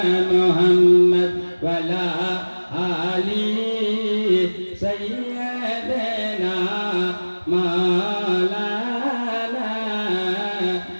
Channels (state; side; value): inverted; both; correlation -1.00